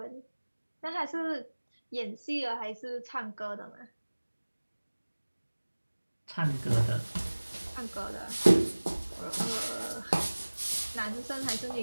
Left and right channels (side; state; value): both; inverted; correlation -1.00